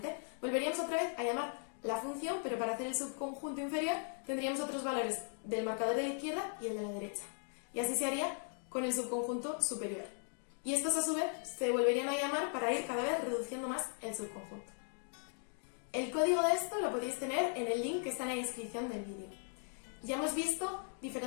Volveríamos otra vez a llamar la función, pero para hacer el subconjunto inferior tendríamos otros valores del marcador de la izquierda y el de la derecha. Y así se haría con el subconjunto superior. Y estos a su vez se volverían a llamar para ir cada vez reduciendo más el subconjunto. El código de esto lo podéis tener en el link que está en la descripción del vídeo. Ya hemos visto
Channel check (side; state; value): right; silent; 52 dB below the other